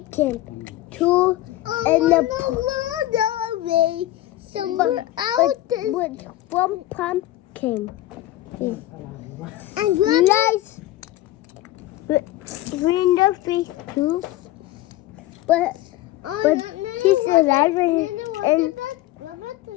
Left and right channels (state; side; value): quieter; right; 15.5 dB